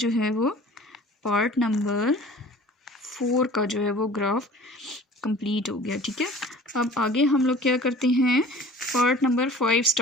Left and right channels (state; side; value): normal; both; correlation 0.45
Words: है वो पार्ट नंबर 4 का जो है वो ग्राफ कंप्लीट हो गया, ठीक है। अब आगे हम लोग क्या करते हैं, पार्ट नंबर 5